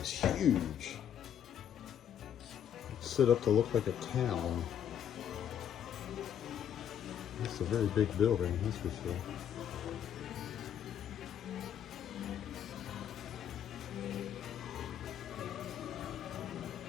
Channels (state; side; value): quieter; right; 9.4 dB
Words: huge. It's set up to look like a town. It's a very big building, that's for sure.